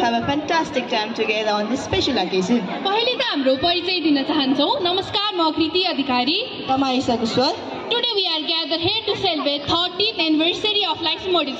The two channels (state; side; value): identical; both; correlation 1.00